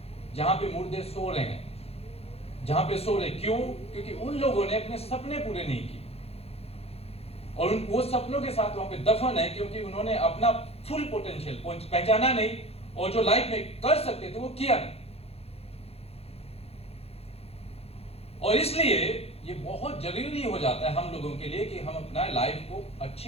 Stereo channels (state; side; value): late; right; 0.29 ms